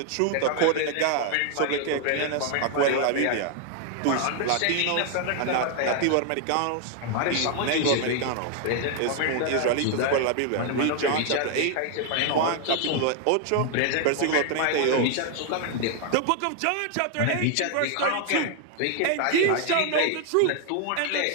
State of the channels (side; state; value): both; different; correlation 0.00